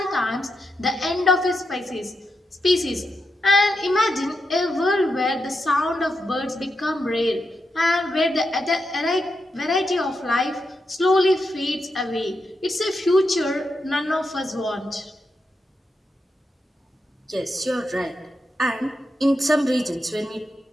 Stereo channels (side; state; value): both; normal; correlation 0.85